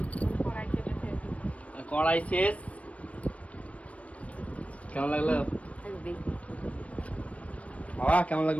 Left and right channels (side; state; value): right; late; 0.065 ms